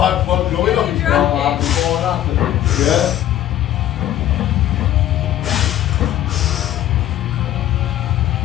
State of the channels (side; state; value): right; quieter; 12.5 dB